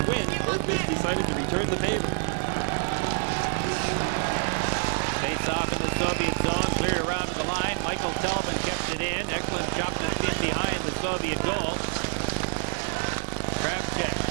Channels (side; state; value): left; silent; digital silence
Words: win, Bergqvist decided to return the favor. Face off in the Soviet zone, cleared around to the line. Michael Telvin kept it in. Eklund chopped it in behind the Soviet goal. Kravchuk